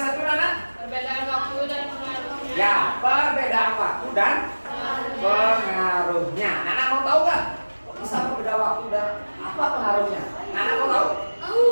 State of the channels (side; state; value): both; inverted; correlation -1.00